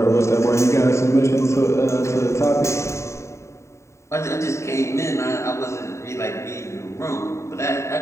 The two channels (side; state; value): right; late; 0.14 ms